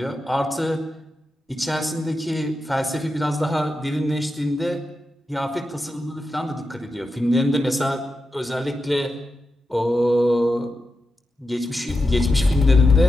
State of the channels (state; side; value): normal; both; correlation 0.89